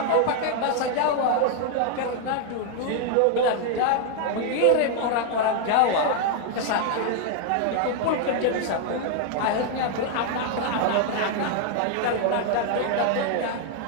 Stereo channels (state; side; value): different; both; correlation 0.00